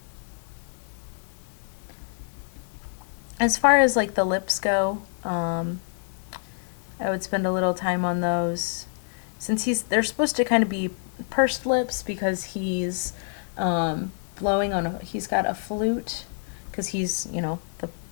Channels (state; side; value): silent; right; digital silence